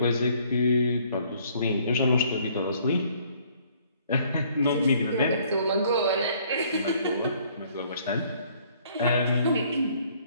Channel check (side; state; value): both; inverted; correlation -0.61